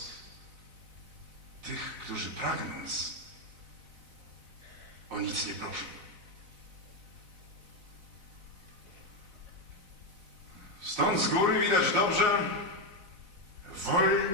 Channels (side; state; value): left; late; 4.0 ms